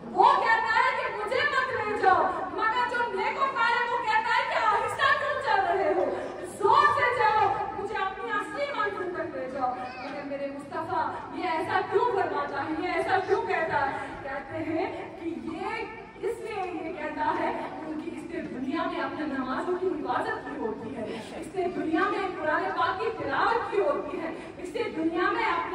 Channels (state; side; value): identical; both; correlation 1.00